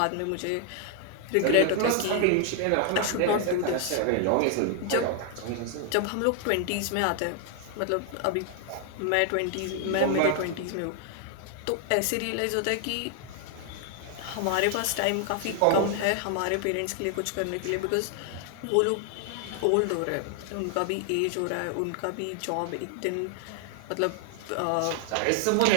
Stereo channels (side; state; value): both; different; correlation 0.00